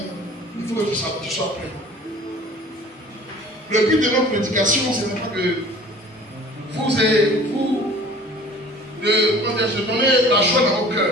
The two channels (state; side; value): normal; both; correlation 0.47